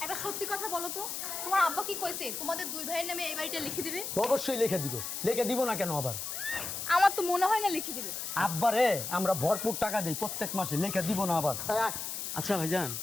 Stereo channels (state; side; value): noise; left; hiss, 5 dB below the sound